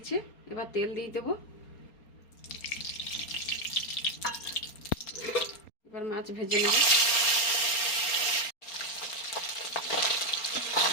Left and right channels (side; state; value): right; late; 4.3 ms